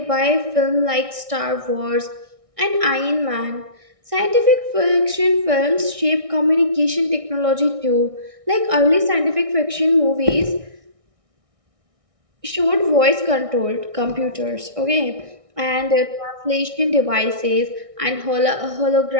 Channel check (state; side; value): late; left; 1.6 ms